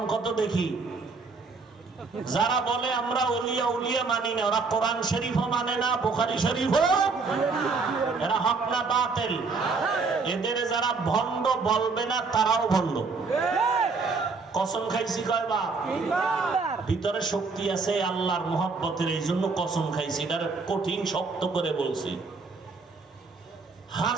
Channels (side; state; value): left; quieter; 4.4 dB